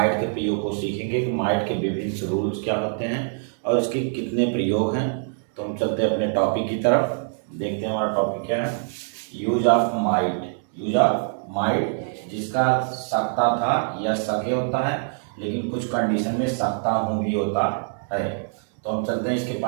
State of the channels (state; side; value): silent; left; digital silence